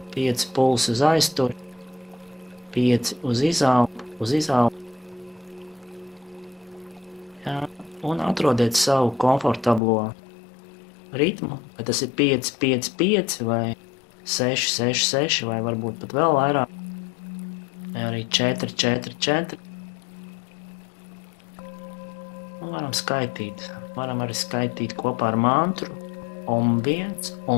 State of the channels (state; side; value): drops out; right; at 9.8 s